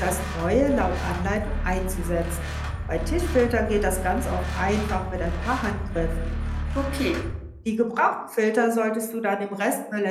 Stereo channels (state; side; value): identical; both; correlation 1.00